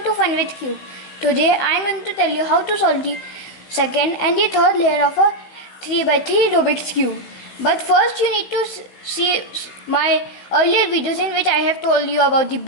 to Fun with Cube. Today I am going to tell you how to solve the second and the third layer of a 3x3 Rubik's Cube. But first you need to see my earlier videos in which I have told you about the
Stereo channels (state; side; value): late; right; 15 ms